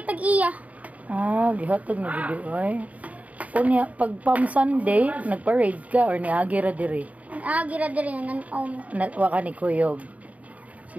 tag-iya. Ah, gihatag na gid ay. Unya pag Palm Sunday, nagparade ka or niagi ra diri? Gira diri nan Wa ka ni kuyog.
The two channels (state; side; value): late; left; 0.070 ms